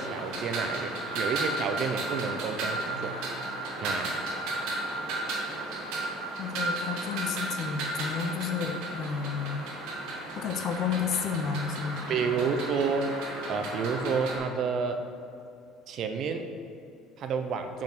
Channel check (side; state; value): both; normal; correlation 0.48